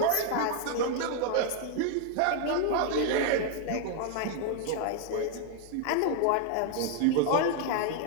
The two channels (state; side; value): different; both; correlation 0.00